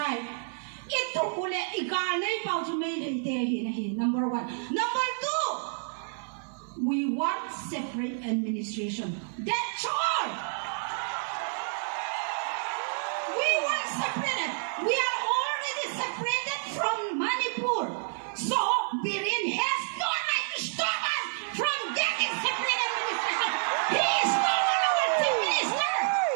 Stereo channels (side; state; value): left; silent; 56 dB below the other